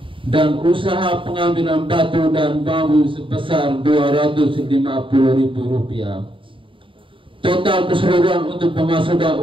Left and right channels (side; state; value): left; late; 0.25 ms